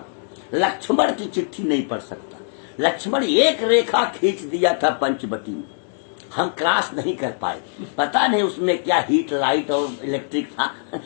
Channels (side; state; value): right; silent; digital silence